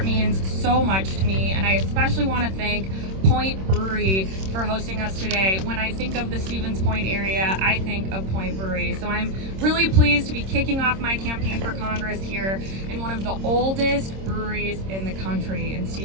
means so much to me, and I especially want to thank Point Brewery for hosting us today. When I think of the Stevens Point area, I think of Point Brewery. So I'm really pleased to be kicking off my campaign for Congress here in one of the oldest breweries in the country in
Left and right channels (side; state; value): left; late; 26 ms